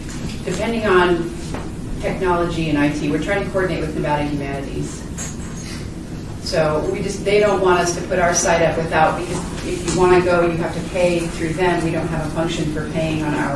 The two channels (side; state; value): both; identical; correlation 1.00